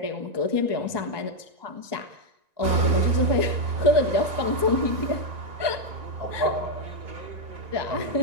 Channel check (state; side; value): late; left; 1.9 ms